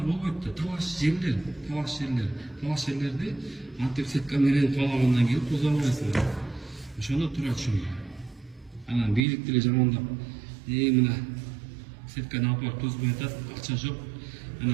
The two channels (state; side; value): drops out; left; at 9.2 s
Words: болбойт да. Талаш жерлерди антип сетка менен каалагандан кийин тозомойсуң. Ошондо туура түшүнгүлө. Анан бийлик деле жамандап, мына сетканы алып тозбой атат, акча жок.